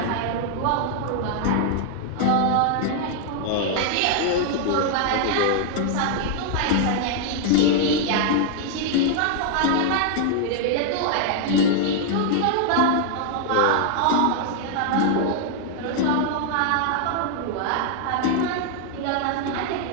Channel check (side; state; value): both; different; correlation 0.00